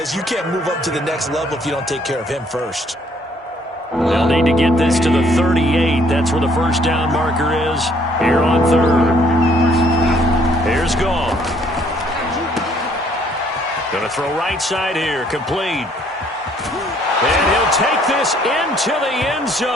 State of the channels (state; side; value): normal; both; correlation 0.64